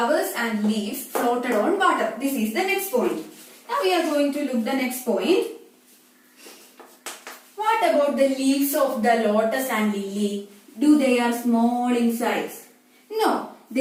and leaves floated on water. This is the next point. Now we are going to look the next point. What about the leaves of the lotus and lily? Do they are small in size? No,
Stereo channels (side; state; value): both; identical; correlation 1.00